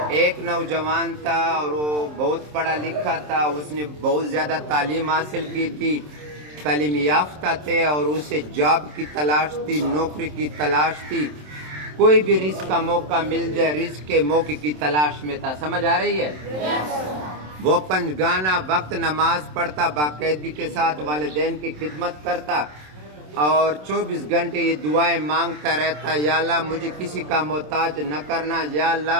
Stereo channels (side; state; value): left; late; 27 ms